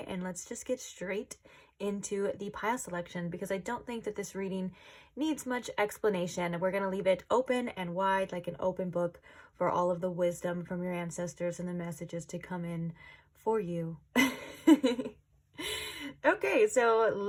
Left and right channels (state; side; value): identical; both; correlation 1.00